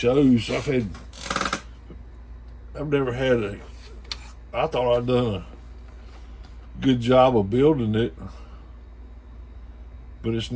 I've never had I thought I'd done a good job of building it, but it's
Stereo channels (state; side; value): identical; both; correlation 1.00